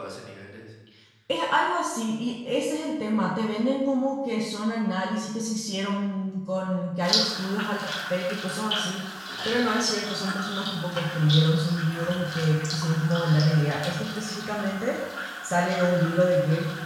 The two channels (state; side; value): identical; both; correlation 1.00